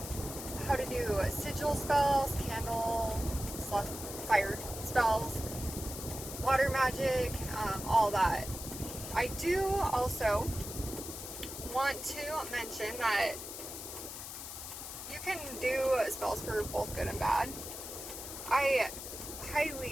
how to do sigil spells, candle, fire spells, water magic, all that. I do also want to mention that you can do spells for both good and bad. I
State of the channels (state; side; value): noise; left; hiss, 9 dB below the sound